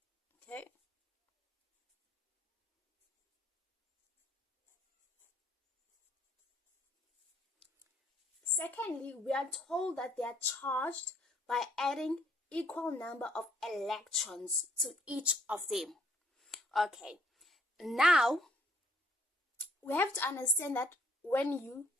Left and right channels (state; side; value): normal; both; correlation 0.66